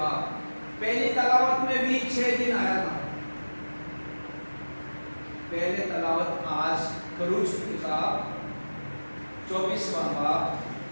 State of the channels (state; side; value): inverted; both; correlation -1.00